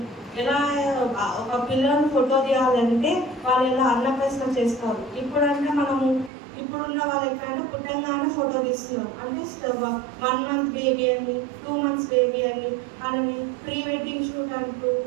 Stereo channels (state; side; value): drops out; left; at 6.3 s